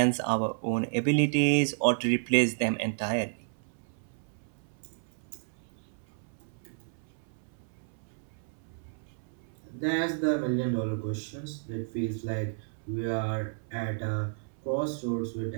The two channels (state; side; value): silent; left; 57 dB below the other